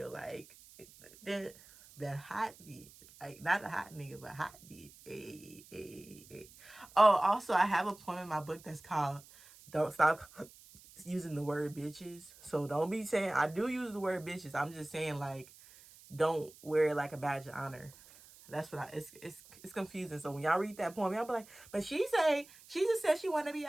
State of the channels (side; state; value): right; noise; hiss, 22 dB below the sound